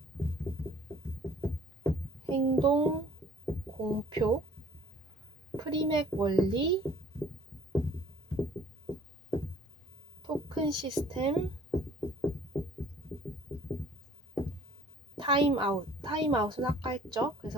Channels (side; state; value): both; normal; correlation 0.54